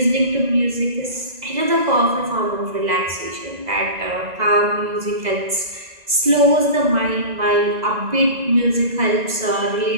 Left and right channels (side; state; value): left; late; 2.0 ms